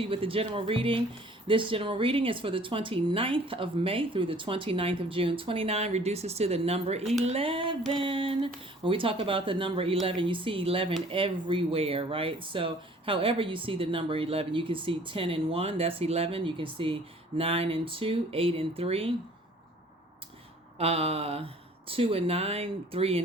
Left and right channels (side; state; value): both; normal; correlation 0.53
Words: with the general reading. This general reading is for the 29th of May through the 29th of June. 29 reduces to the number 11. When we talk about the number 11, you see 11 everywhere, right? So however you see the number 11, you can see 10 and 1, that's 11. You can see 9 and 2, 8 and 3, 2 and 9, 3